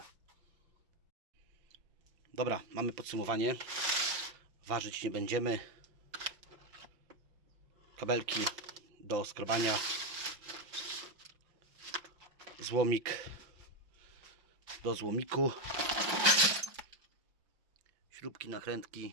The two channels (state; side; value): late; left; 5.8 ms